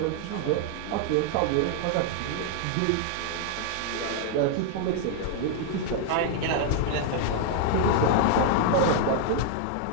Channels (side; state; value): both; different; correlation 0.00